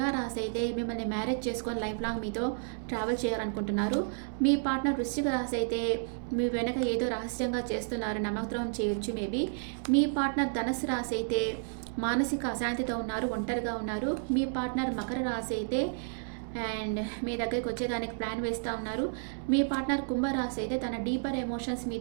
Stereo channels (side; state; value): left; silent; 57 dB below the other